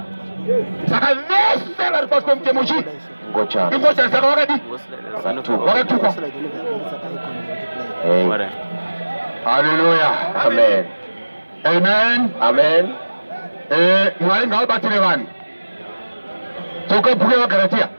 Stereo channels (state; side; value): inverted; both; correlation -1.00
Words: Saka vese vari pasi pemutemo chii? Ngochani. Ngochani saka wakadi? Wakatukwa. Hallelujah. Amen. Amen. Amen. Mwari ngavabatire vanhu. Toka bhuku yevaGaratia.